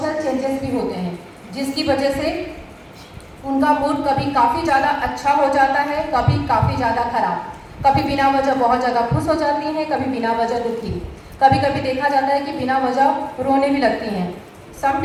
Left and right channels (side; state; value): both; identical; correlation 1.00